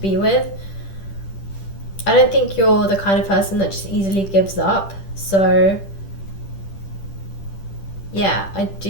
with. I don't think you're the kind of person that just easily gives up. So yeah, I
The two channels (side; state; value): right; late; 10 ms